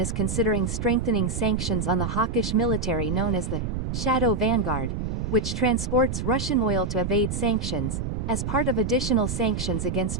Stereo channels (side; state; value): right; noise; rumble, 3 dB below the sound